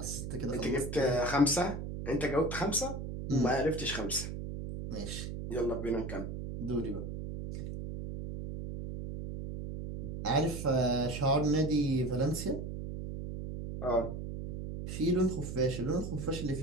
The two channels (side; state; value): right; noise; hum, 6 dB below the sound